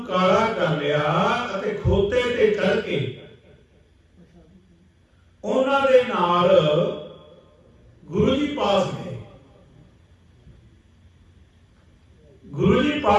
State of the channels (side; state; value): both; identical; correlation 1.00